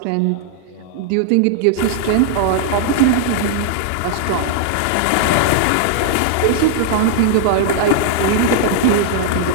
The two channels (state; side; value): different; both; correlation -0.01